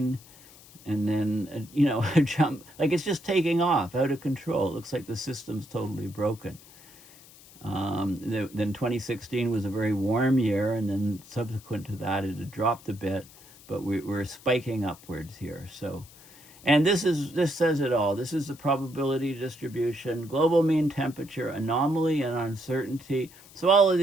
and then, you know, a jump, like it's just taking off, out of control. It looks like the system's totally broken. Then 2016 was a very warm year, and then subsequent to that, it had dropped a bit, but we're spiking upwards here. So, and this says it all. This is the probability distribution, global mean temperature, anomaly, and uncertainty. So all of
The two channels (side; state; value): left; noise; hiss, 22 dB below the sound